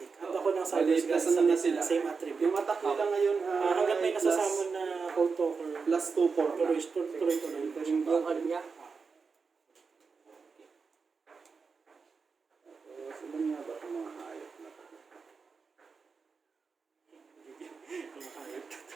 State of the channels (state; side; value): quieter; left; 5.0 dB